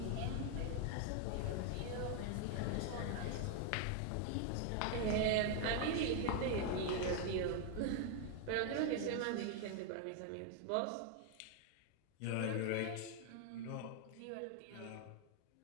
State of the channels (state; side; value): different; both; correlation 0.00